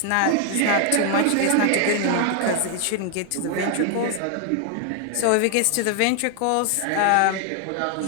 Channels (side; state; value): both; different; correlation 0.00